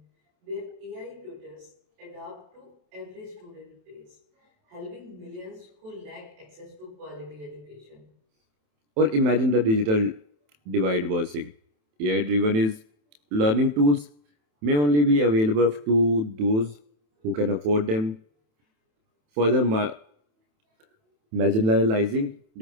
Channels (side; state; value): left; late; 27 ms